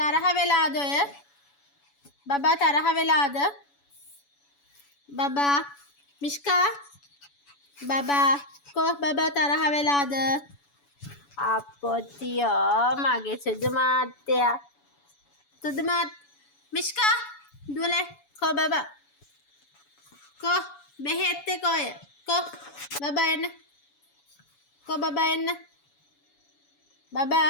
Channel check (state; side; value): late; right; 7.0 ms